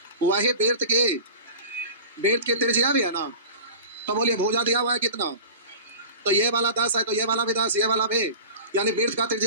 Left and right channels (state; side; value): inverted; both; correlation -0.35